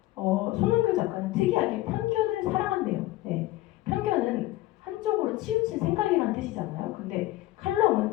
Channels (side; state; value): right; quieter; 16.9 dB